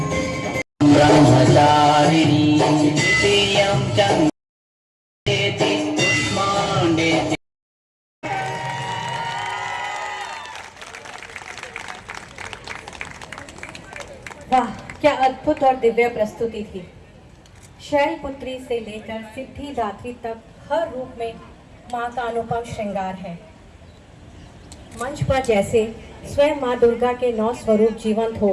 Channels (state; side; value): identical; both; correlation 1.00